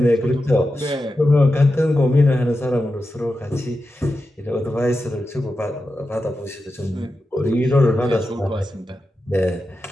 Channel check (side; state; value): both; normal; correlation 0.90